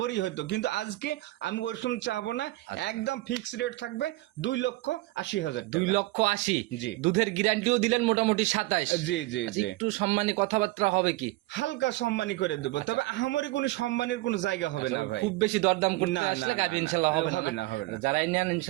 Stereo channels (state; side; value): quieter; left; 19.5 dB